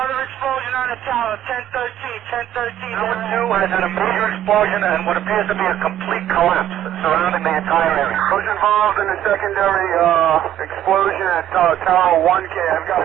explosion on the tower, 1013. Number 2 has had a major explosion and what appears to be a complete collapse surrounding the entire area. Who's involved in the secondary explosion at Tower 1K? I've got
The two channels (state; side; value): quieter; left; 11.6 dB